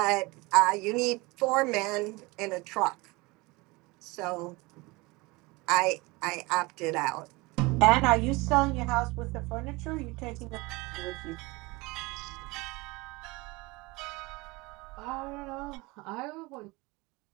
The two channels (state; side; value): quieter; left; 23.8 dB